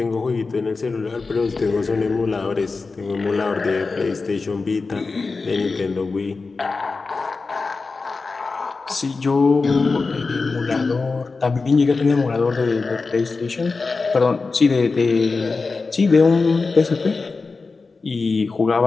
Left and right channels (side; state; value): right; quieter; 4.1 dB